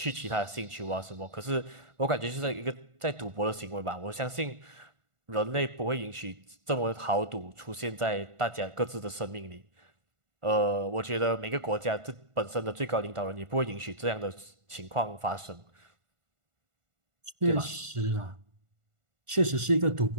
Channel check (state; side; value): late; left; 1.4 ms